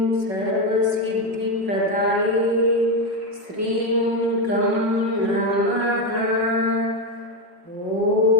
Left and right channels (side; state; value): left; late; 5.4 ms